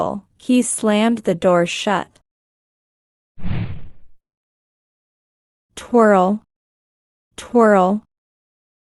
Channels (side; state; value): both; identical; correlation 1.00